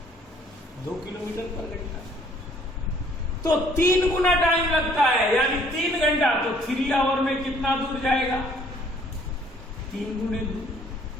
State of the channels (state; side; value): normal; both; correlation 0.60